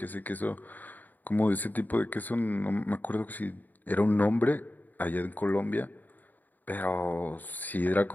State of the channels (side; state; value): right; late; 0.084 ms